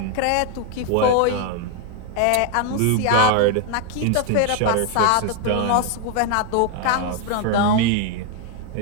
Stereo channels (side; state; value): both; different; correlation 0.01